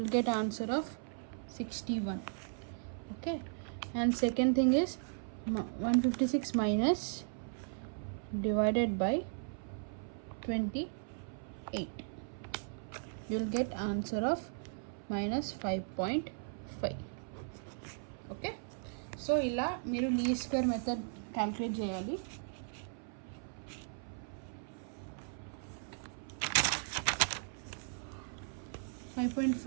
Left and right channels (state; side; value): silent; left; 53 dB below the other